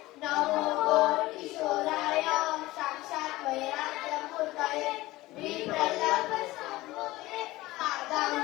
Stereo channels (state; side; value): quieter; right; 18.5 dB